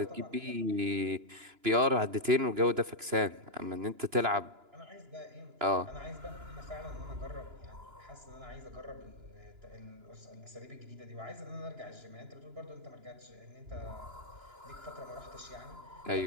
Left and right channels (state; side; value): late; left; 2.9 ms